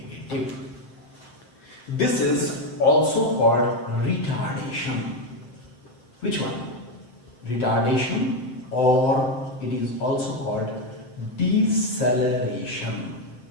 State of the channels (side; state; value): right; late; 8.1 ms